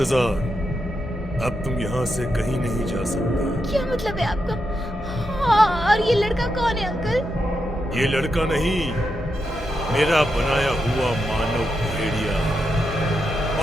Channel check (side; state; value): both; normal; correlation 0.85